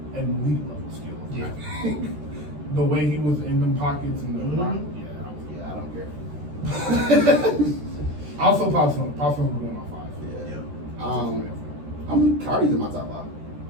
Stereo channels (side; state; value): left; late; 13 ms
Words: an elite level skill. Yeah. I think. The way he was in them pockets and the rock, I don't care. Also, Pop Smoke was going on 5. Yeah. Cardi's in my top 5.